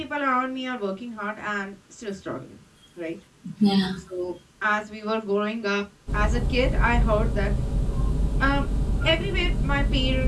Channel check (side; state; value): both; identical; correlation 1.00